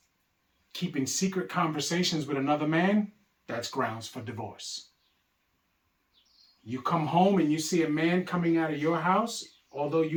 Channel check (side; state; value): both; identical; correlation 1.00